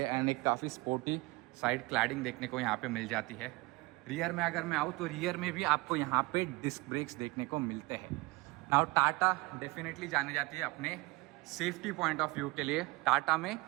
एंड एक काफ़ी स्पोर्टी साइड क्लैडिंग देखने को यहाँ पे मिल जाती है। रियर में अगर मैं आऊँ तो रियर में भी आपको यहाँ पे डिस्क ब्रेक्स देखने को मिलते हैं। नाउ टाटा डेफिनेटली जाने जाती है अपने सेफ्टी पॉइंट ऑफ व्यू के लिए। टाटा में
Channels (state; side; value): quieter; left; 23.5 dB